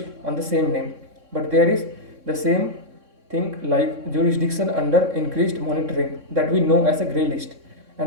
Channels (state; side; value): late; left; 3.6 ms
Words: on the same name. But there is the same thing like jurisdiction under increased monitoring that we know as a grey list,